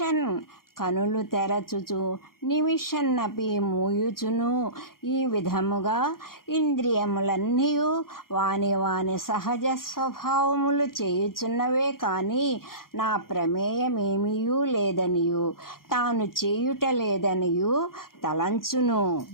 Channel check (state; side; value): late; right; 0.92 ms